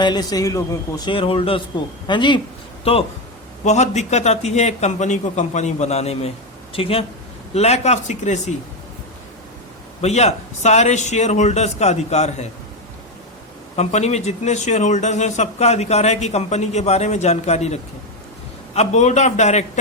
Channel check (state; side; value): normal; both; correlation 0.09